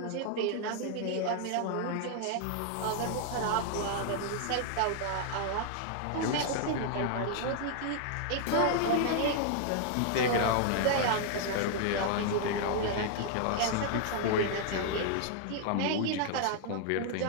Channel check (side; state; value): both; different; correlation 0.00